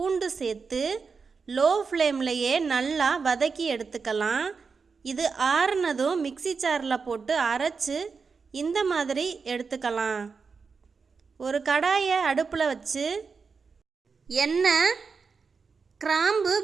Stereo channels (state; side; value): quieter; left; 5.1 dB